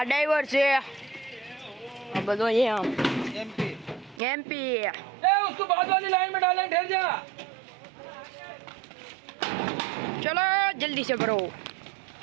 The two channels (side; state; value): left; drops out; at 4.2 s